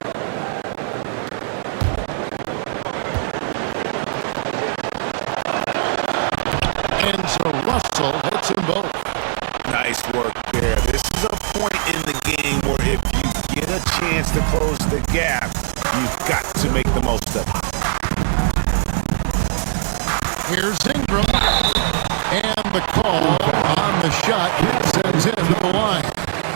And so Russell hits them both. Nice work there. This is a point in the game where if you get a chance to close the gap, you've got to make the most of it. Here's Ingram. And the call on the shot sends him to the line.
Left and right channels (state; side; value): silent; left; digital silence